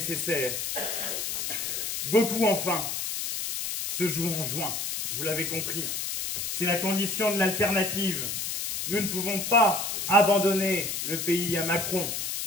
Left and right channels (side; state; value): left; noise; hiss, 3 dB below the sound